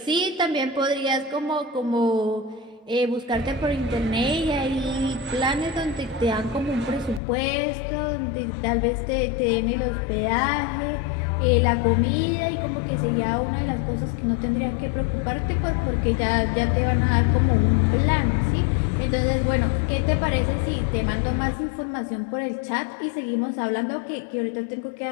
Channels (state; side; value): drops out; right; at 7.2 s